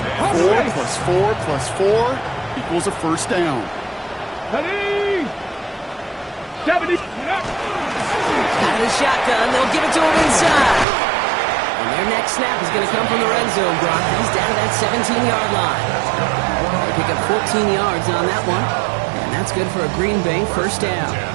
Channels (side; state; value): left; drops out; at 10.9 s